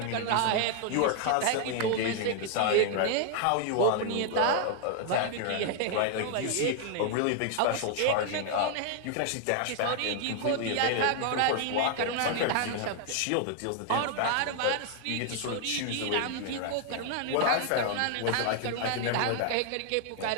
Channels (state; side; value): different; both; correlation 0.00